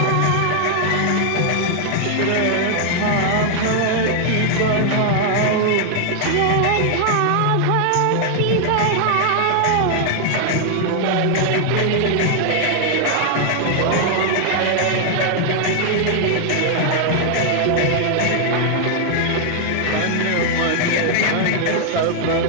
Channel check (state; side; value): different; both; correlation 0.00